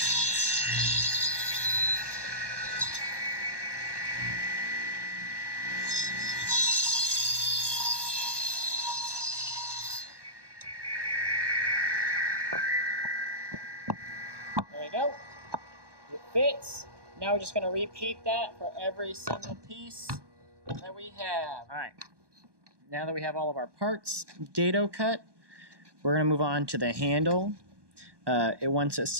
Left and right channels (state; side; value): late; left; 1.2 ms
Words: There we go. It fits. Now we're just going to repeat that for every single piece that we have. All right. Now that we have all of our parts dado cut, we're going to move on to the handle. It wants us